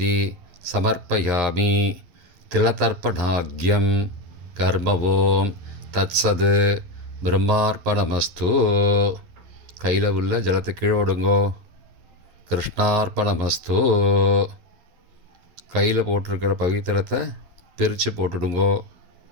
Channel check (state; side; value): late; left; 11 ms